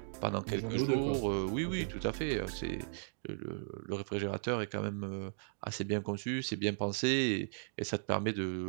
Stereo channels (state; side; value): silent; left; digital silence